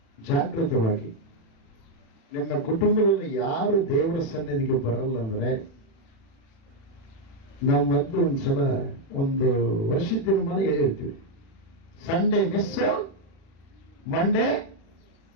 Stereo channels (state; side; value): late; right; 36 ms